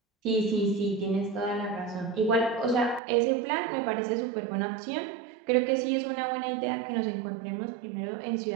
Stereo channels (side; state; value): left; drops out; at 3.0 s